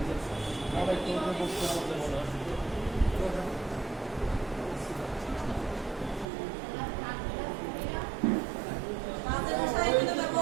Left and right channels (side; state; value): left; drops out; at 6.2 s